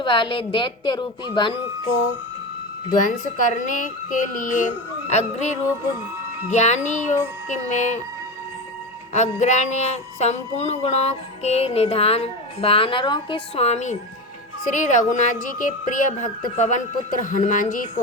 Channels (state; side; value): normal; both; correlation 0.21